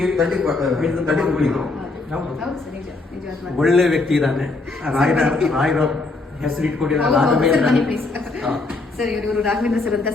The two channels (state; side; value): quieter; right; 3.4 dB